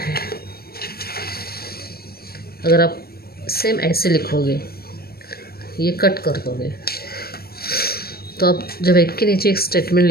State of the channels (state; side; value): late; right; 0.45 ms